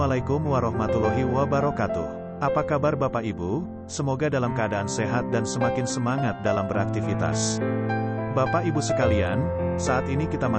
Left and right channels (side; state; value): both; identical; correlation 1.00